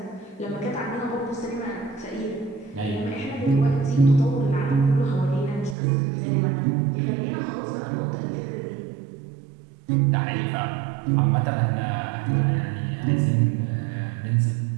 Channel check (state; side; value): drops out; left; at 5.8 s